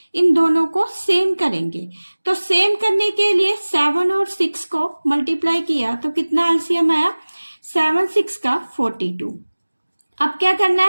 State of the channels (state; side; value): inverted; both; correlation -1.00